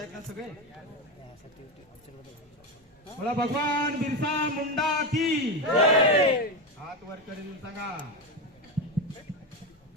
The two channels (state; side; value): normal; both; correlation 0.14